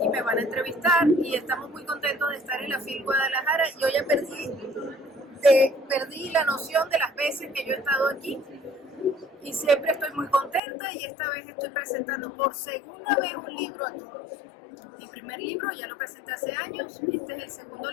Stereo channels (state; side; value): drops out; right; at 10.6 s